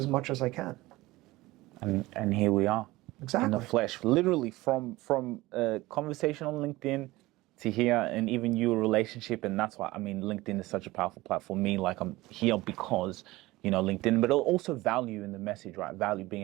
much as I can. And here we are. Exactly. In the flesh, literally from a conversation on LinkedIn to here, and even your relationship. And that's why, I mean, LinkedIn is such a powerful platform for me. Like, I'm here because, LinkedIn, but also value in the message, right? Value, being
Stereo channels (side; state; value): left; quieter; 19.3 dB